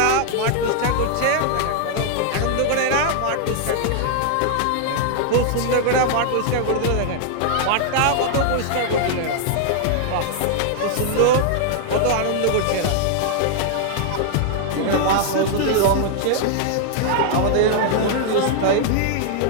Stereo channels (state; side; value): different; both; correlation -0.01